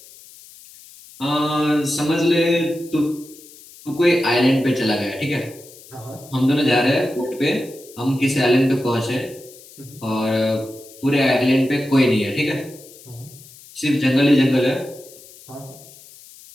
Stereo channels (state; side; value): noise; left; hiss, 21 dB below the sound